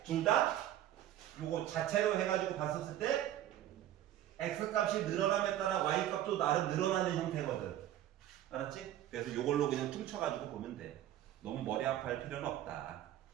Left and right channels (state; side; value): quieter; left; 12.5 dB